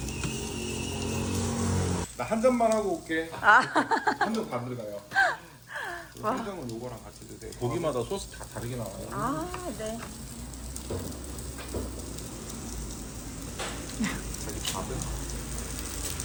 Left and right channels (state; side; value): identical; both; correlation 1.00